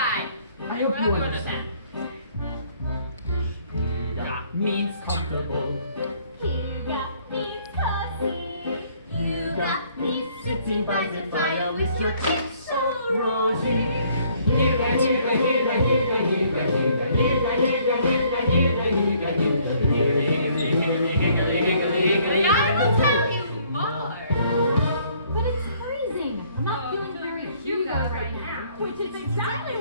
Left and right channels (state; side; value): inverted; both; correlation -0.63